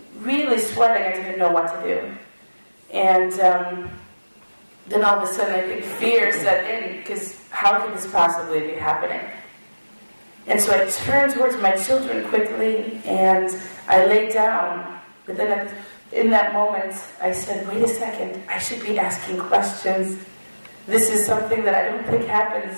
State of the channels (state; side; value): inverted; both; correlation -1.00